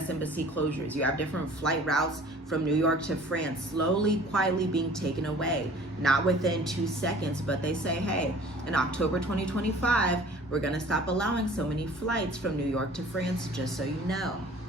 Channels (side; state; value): both; normal; correlation 0.49